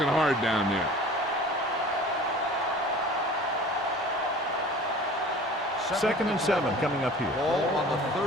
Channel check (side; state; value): both; normal; correlation 0.43